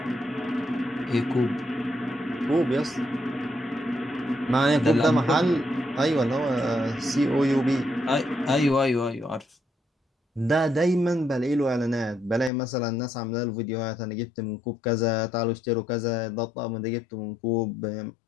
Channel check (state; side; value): drops out; right; at 12.5 s